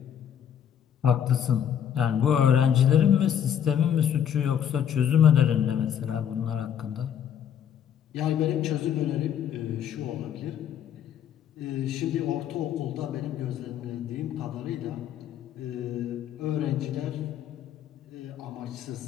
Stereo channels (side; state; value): right; quieter; 9.2 dB